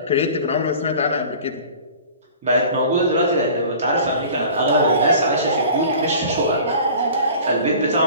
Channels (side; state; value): both; inverted; correlation -0.43